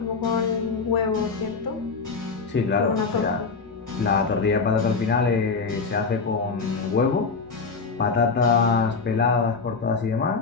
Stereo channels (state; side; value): quieter; right; 4.7 dB